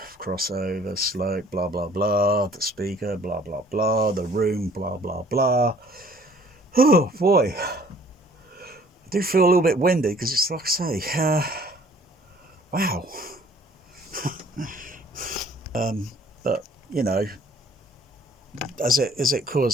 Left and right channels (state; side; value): normal; both; correlation 0.56